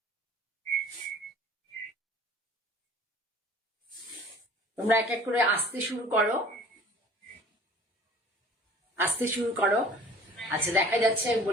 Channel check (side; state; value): both; normal; correlation 0.48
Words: তোমরা এক এক করে আসতে শুরু করো, আসতে শুরু করো। আচ্ছা, দেখা যাচ্ছে,